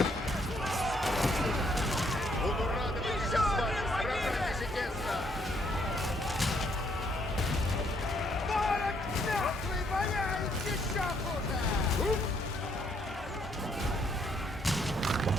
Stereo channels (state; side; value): normal; both; correlation 0.70